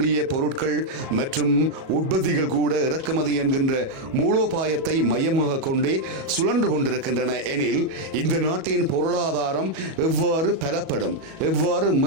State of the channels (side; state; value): left; late; 37 ms